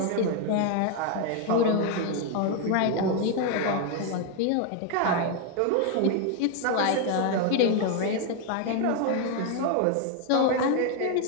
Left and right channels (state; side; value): different; both; correlation 0.01